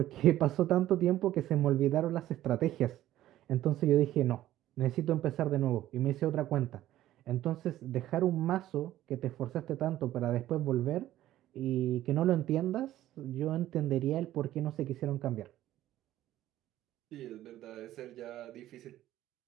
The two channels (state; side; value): quieter; left; 13.9 dB